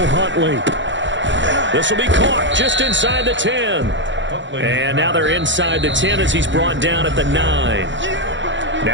Huntley. This will be caught just inside the 10. And now they're inside the 10 as he's brought down at the 9.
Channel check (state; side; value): late; left; 0.54 ms